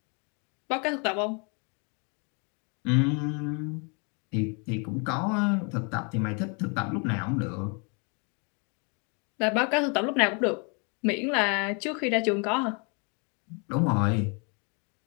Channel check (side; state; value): right; quieter; 35.2 dB